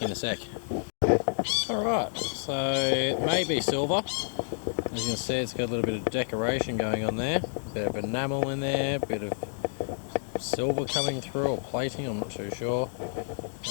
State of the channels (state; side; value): silent; right; digital silence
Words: in a sec. Alright, so it may be silver. As you can see, it's got a little bit of decoration going on there. A bit of enamel in there, a bit of silver coming through, or plating, I'm not too sure.